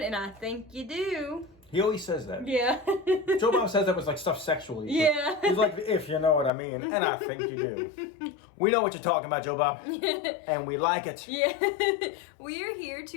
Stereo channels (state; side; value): drops out; right; at 6.5 s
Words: and I think you do. He always says that. Yeah. Joe Bob says that was like stuff sexually. Yeah. He's like, if you know what I mean, and I think you do. We know what you're talking about, Joe Bob. And we like it. Yeah. We are here